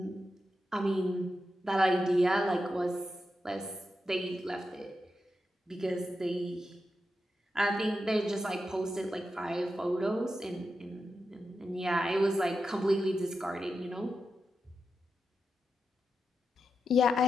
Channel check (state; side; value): normal; both; correlation 0.88